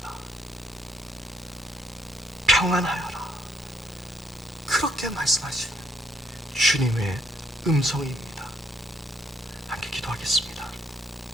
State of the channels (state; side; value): normal; both; correlation 0.70